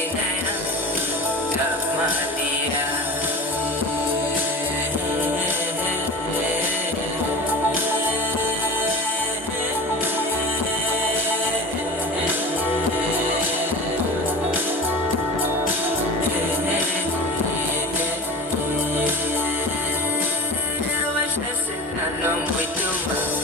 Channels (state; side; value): normal; both; correlation 0.35